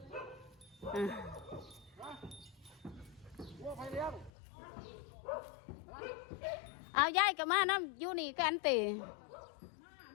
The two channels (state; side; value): drops out; right; at 4.3 s